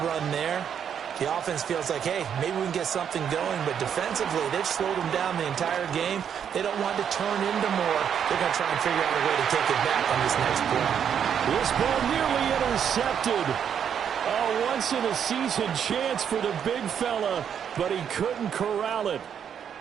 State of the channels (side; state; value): left; quieter; 8.3 dB